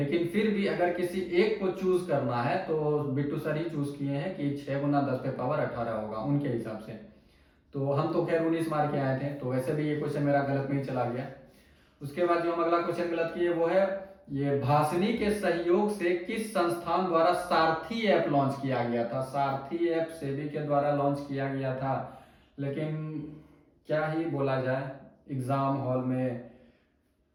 फिर भी अगर किसी एक को चूज करना है तो बिट्टू सर ही चूज किए हैं कि 6 गुना 10 पे पावर 18 होगा उनके हिसाब से। तो हम तो खैर 19 मार के आए थे, तो वैसे भी ये क्वेश्चन मेरा गलत में ही चला गया। उसके बाद जो हम अगला क्वेश्चन गलत किए वो है, ये भाषिनी के सहयोग से किस संस्थान द्वारा सारथी ऐप लॉन्च किया गया था। सारथी ऐप सेबी के द्वारा लॉन्च किया गया था, लेकिन क्या ही बोला जाए, एग्जाम हॉल में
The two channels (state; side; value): identical; both; correlation 1.00